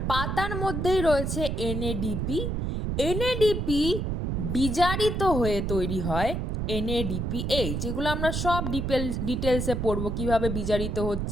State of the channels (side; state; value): right; noise; rumble, 2 dB below the sound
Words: পাতার মধ্যেই রয়েছে এনএডিপি। এনএডিপি বিজারিত হয়ে তৈরি হয় এনএডিপিএইচ। যেগুলো আমরা সব ডিটেলসে পড়বো, কিভাবে বিজারিত